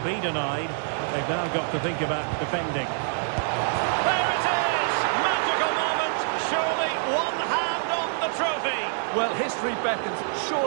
denied, but they've now got to think about defending. There it is! Magical moment! Surely one hand on the trophy! Well, history beckons.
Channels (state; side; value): silent; left; digital silence